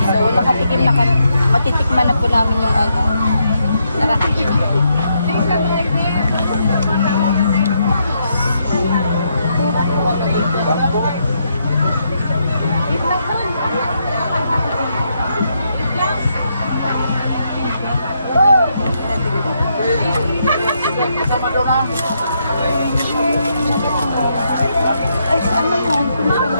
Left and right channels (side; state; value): both; inverted; correlation -0.78